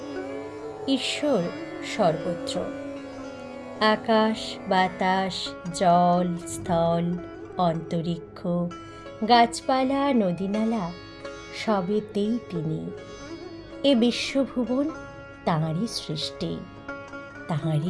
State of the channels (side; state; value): both; identical; correlation 1.00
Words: ঈশ্বর সর্বত্র, আকাশ বাতাস জল স্থল অন্তরিক্ষ গাছপালা নদীনালা সবেতেই তিনি। এ বিশ্বভুবন তাঁরই সৃষ্টি, তাঁরই